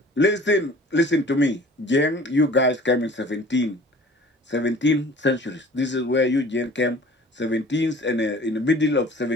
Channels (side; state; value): both; normal; correlation 0.47